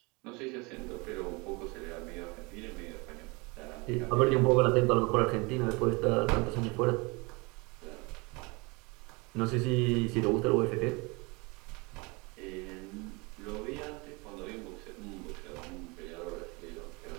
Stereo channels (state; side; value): quieter; left; 27.5 dB